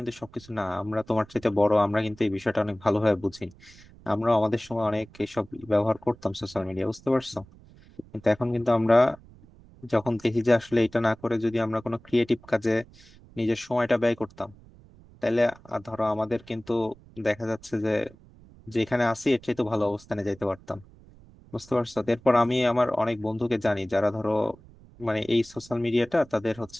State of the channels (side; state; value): right; noise; rumble, 24 dB below the sound